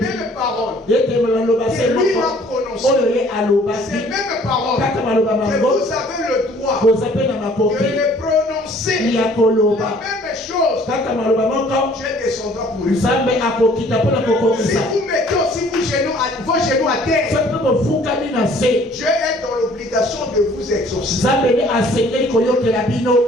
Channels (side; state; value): both; normal; correlation 0.56